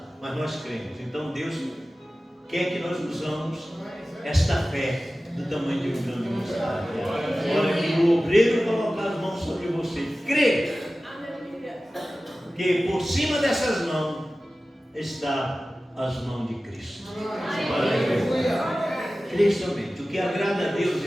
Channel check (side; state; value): both; normal; correlation 0.96